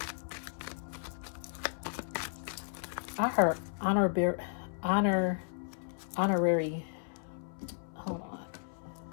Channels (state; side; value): silent; right; 55 dB below the other